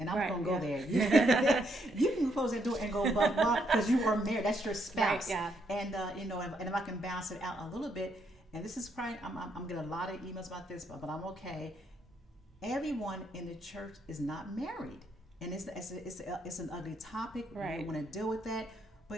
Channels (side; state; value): both; normal; correlation 0.74